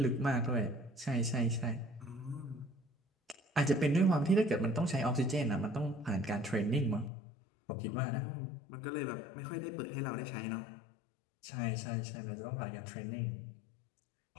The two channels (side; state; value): right; drops out; at 7.1 s